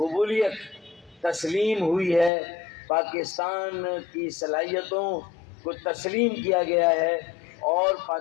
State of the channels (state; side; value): drops out; right; at 2.3 s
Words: تسلیم ہوئی ہے، پاکستان کی صلاحیتوں کو تسلیم کیا گیا ہے، اور